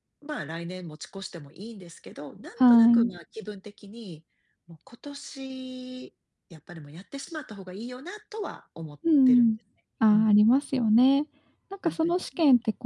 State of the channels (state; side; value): identical; both; correlation 1.00